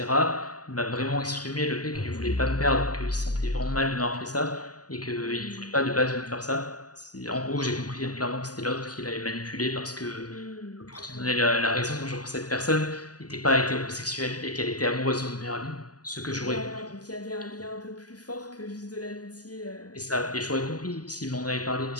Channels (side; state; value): right; late; 0.68 ms